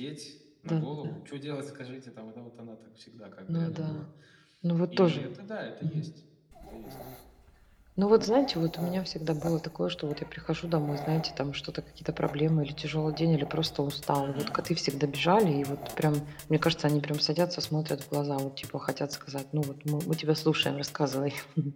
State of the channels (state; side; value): identical; both; correlation 1.00